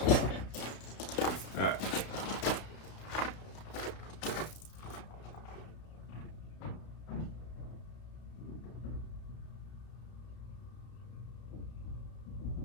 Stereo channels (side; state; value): right; late; 32 ms